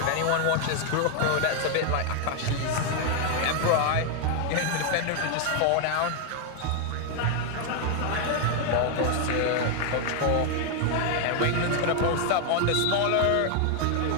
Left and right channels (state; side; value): different; both; correlation 0.01